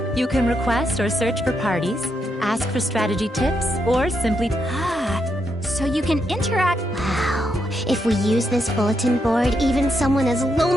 You can request or search for parties, ask for strategy tips, or simply... So you can interact... Wow. If we use this bulletin board, even someone as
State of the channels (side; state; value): both; normal; correlation 0.81